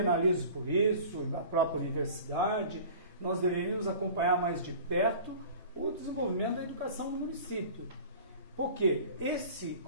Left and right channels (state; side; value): inverted; both; correlation -0.42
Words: por isso, na própria universidade, nós deveríamos acompanhar mais de perto o desenvolvimento da educação no município. Porque esse